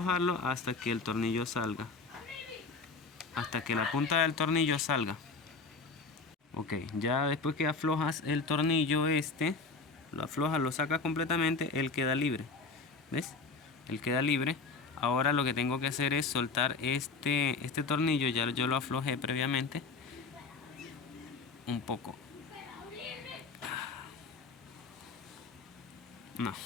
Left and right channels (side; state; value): right; quieter; 4.3 dB